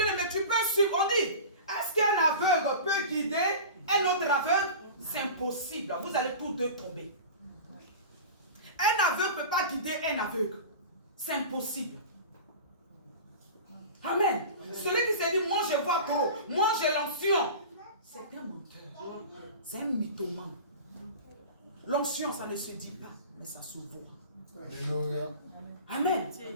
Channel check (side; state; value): both; inverted; correlation -0.34